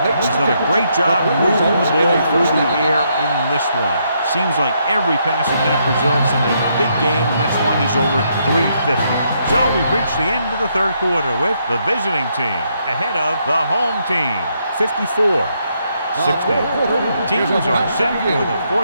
He's done a great job moving the ball through the air in this one. Seems like every pass attempt results in a big game, and that's why he's over 350. So we've reached the end of the third quarter with the visiting team ahead of the home team, 54-60. Teams are set for the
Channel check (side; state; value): both; inverted; correlation -0.75